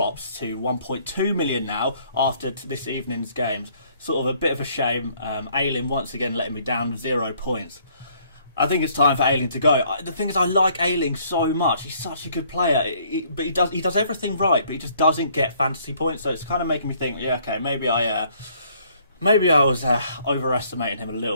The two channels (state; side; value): inverted; both; correlation -0.63